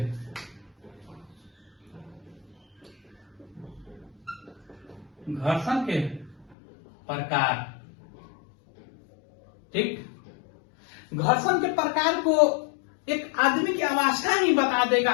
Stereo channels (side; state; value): right; drops out; at 6.6 s